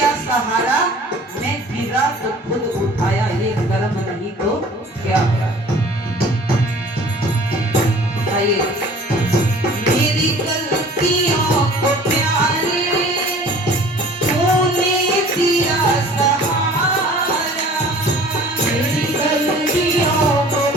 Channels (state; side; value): normal; both; correlation 0.48